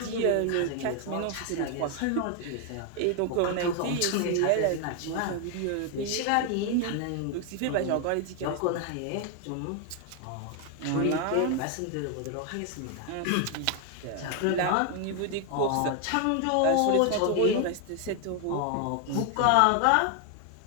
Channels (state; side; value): different; both; correlation 0.01